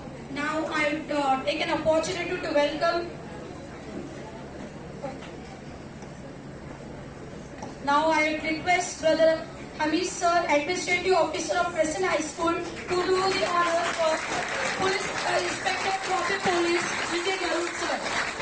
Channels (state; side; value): identical; both; correlation 1.00